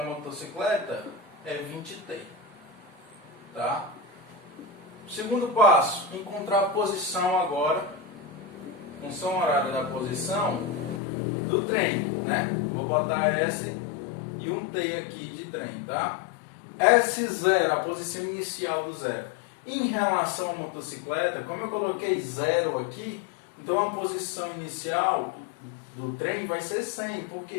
motocicleta é 20t, tá? Segundo passo, encontrar a posição agora, função horária da posição do trem, né? Vou botar S e um T aqui de trem, tá? S0, a posição inicial do zero. Em relação à motocicleta, como eu coloquei 0 aqui, então a posição inicial do trem vai ser 100. Por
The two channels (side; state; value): right; drops out; at 11.0 s